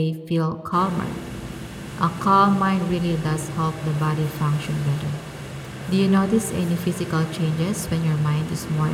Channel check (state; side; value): identical; both; correlation 1.00